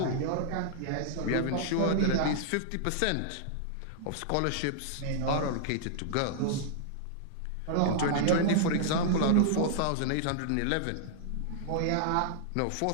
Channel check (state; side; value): different; both; correlation -0.01